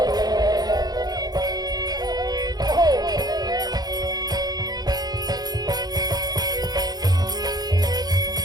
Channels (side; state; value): left; late; 0.19 ms